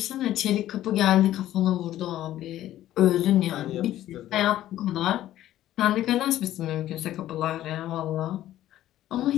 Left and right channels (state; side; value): quieter; right; 13.4 dB